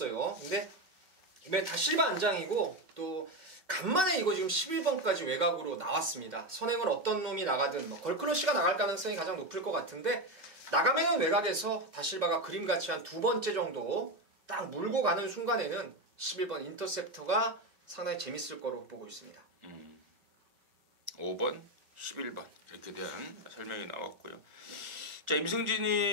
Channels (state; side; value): late; left; 5.2 ms